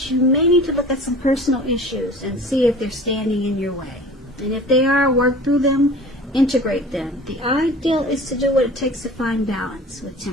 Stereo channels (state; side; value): normal; both; correlation 0.42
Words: you may need to look at some personal issues and see if they're standing in your way. And if they are, work through them, integrate them. The ideal is to do what it takes to find balance with